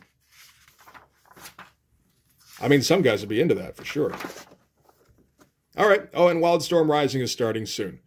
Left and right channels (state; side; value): identical; both; correlation 1.00